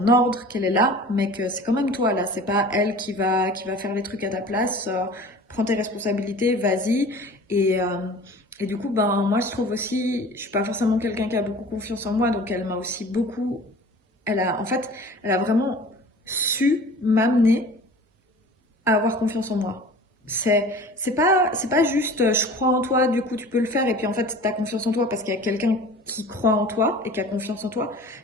ordre, qu'elle est là, mais que c'est quand même toi là. C'est pas elle qui va faire les trucs à ta place. Prends tes responsabilités, vas-y. Et, euh, et du coup, ben, moi, je trouve aussi, je suis pas forcément quelqu'un qui a beaucoup confiance en moi, donc elle m'a aussi beaucoup, en fait, elle a vraiment su m'amener à avoir confiance en moi. C'est pas juste je crois en toi, du coup tu peux le faire et puis en fait tu as confiance en toi parce qu'il y a quelqu'un qui croit en toi et qui a confiance en toi.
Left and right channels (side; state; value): both; normal; correlation 0.42